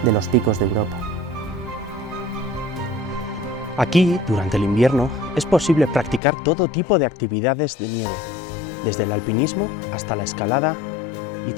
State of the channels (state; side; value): drops out; right; at 6.2 s